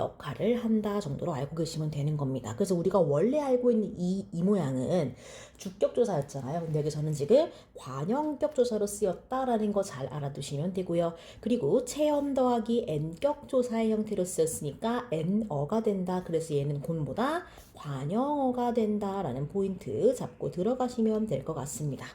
한다 정도로 알고 계시면 되는 겁니다. 그래서 우리가 원래 알고 있는 이 모양은 주격 조사였잖아요. 근데 여기서는 지금 관형격 조사로 쓰였다라는 거 잘 알아두시면 되고요. 그리고 체험 더하기 n격 조사의 형태로 쓰였으니까 n어가 된다. 그래서 얘는 곤보다 관형어가 된다라는 포인트 잡고 들어가시면 될 것 같습니다.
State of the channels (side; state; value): both; identical; correlation 1.00